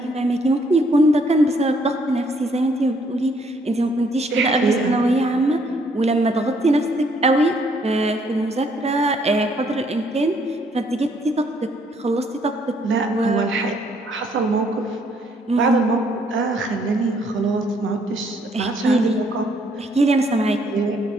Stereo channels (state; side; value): normal; both; correlation 0.67